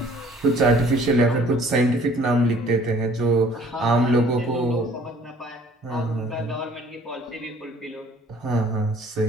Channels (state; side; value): normal; both; correlation 0.55